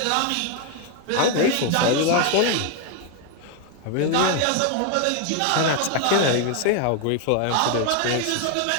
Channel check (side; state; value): both; different; correlation 0.01